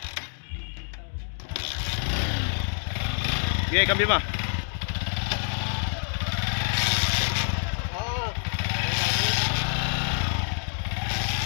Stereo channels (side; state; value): right; silent; digital silence